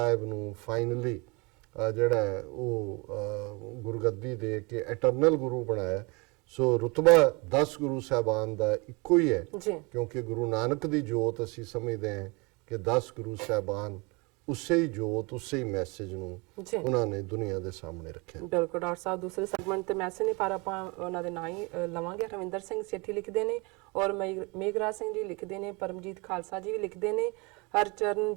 ਨੂੰ ਫਾਈਨਲੀ ਜਿਹੜਾ ਉਹ ਗੁਰਗੱਦੀ ਦੇ ਕੇ ਐਟਰਨਲ ਗੁਰੂ ਬਣਾਇਆ। ਸੋ ਰੁਤਬਾ 10 ਗੁਰੂ ਸਾਹਿਬਾਨ ਦਾ ਇੱਕੋ ਹੀ ਹੈ, ਕਿਉਂਕਿ ਗੁਰੂ ਨਾਨਕ ਦੀ ਜੋਤ ਅਸੀਂ ਸਮਝਦੇ ਹਾਂ ਕਿ 10 ਗੁਰੂ ਸਾਹਿਬਾਨ ਉਸੇ ਹੀ ਜੋਤ, ਉਸੇ ਹੀ ਮੈਸੇਜ ਨੂੰ ਉਹਨਾਂ ਨੇ ਦੁਨੀਆ ਦੇ ਸਾਹਮਣੇ ਰੱਖਿਆ। ਬਿਲਕੁਲ ਡਾਕਟਰ ਸਾਹਿਬ, ਦੂਸਰੇ ਸੈਗਮੈਂਟ ਤੇ ਮੈਸੇਜ ਨੇ ਪਰ ਆਪਾਂ ਉਹਨਾਂ ਦੇ ਨਾਂ ਹੀ ਲਵਾਂਗੇ। ਰਵਿੰਦਰ ਸਿੰਘ ਸੇਠੀ ਲਿਖਦੇ ਨੇ ਔਰ ਮੇਘਰਾਜ ਸਿੰਘ ਜੀ ਲਿਖਦੇ ਨੇ, ਪਰਮਜੀਤ ਖਾਲਸਾ ਜੀ ਵੀ ਲਿਖਦੇ ਨੇ,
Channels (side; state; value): left; quieter; 28.2 dB